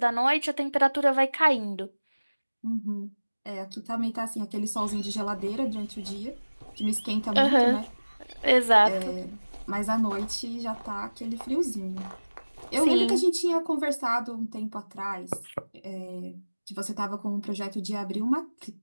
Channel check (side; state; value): both; inverted; correlation -1.00